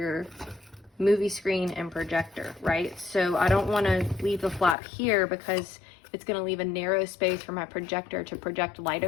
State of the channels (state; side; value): drops out; right; at 4.8 s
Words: movie screen and projector, right? So I don't want to leave the flap here because it's going to leave a narrow space for my projector to project light